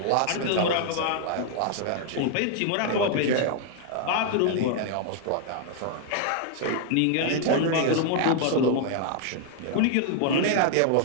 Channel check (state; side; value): different; both; correlation 0.00